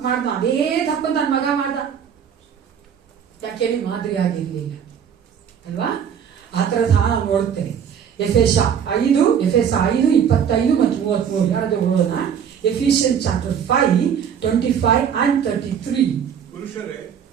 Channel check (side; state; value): left; quieter; 8.1 dB